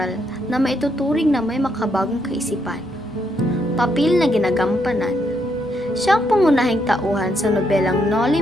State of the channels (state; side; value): normal; both; correlation 0.76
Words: na maituturing na may makabagong kaisipan. Papel na ginagampanan. Siya ang pangunahing tauhan sa nobelang Noli